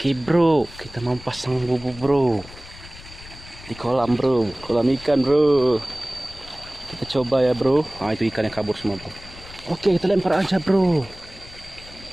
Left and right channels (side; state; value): left; noise; rumble, 18 dB below the sound